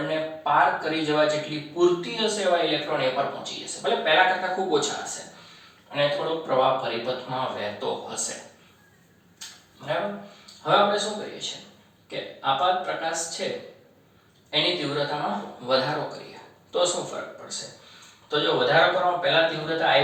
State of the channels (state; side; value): identical; both; correlation 1.00